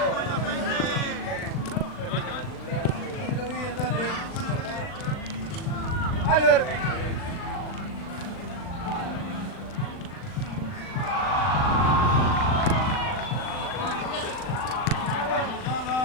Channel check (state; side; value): late; right; 39 ms